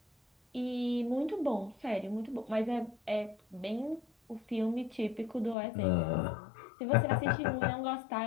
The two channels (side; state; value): right; drops out; at 5.6 s